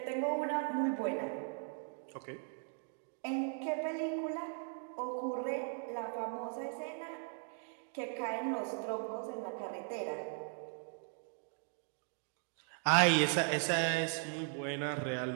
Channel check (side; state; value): left; silent; 52 dB below the other